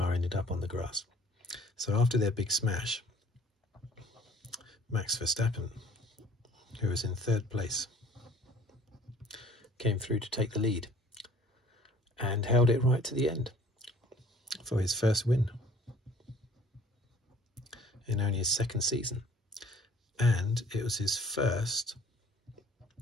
ended up on the grass. So after their big smash, Max Verstappen, who was in third place, came through to take the lead and held it right to the end for his first win in only his second season. And it was his first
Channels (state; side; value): normal; both; correlation 0.53